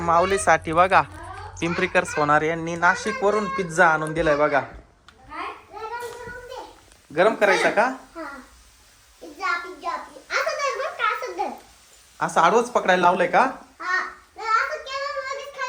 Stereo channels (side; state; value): both; identical; correlation 1.00